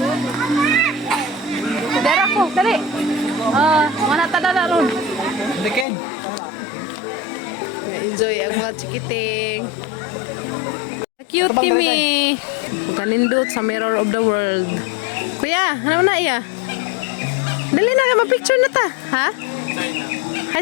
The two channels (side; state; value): right; drops out; at 5.9 s